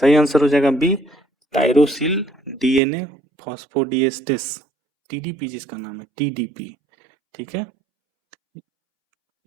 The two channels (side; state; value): left; drops out; at 2.8 s